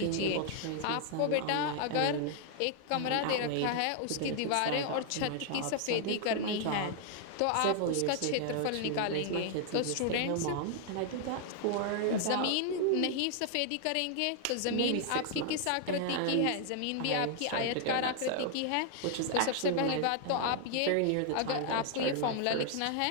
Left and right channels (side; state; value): both; different; correlation 0.00